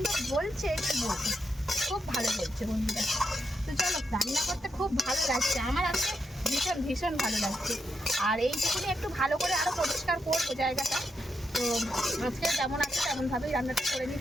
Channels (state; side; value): normal; both; correlation 0.83